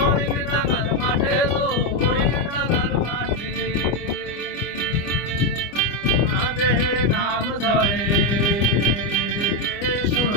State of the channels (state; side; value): late; right; 25 ms